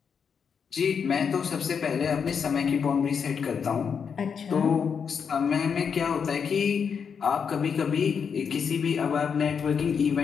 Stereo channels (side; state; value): right; quieter; 6.6 dB